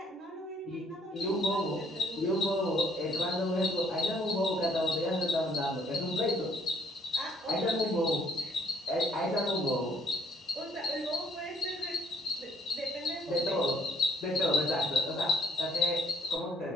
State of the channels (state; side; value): normal; both; correlation 0.64